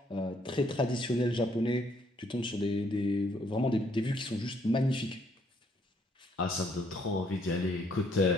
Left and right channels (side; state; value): both; normal; correlation 0.68